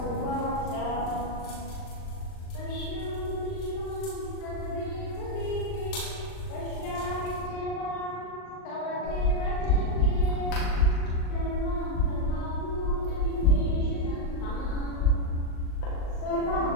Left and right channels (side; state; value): right; late; 39 ms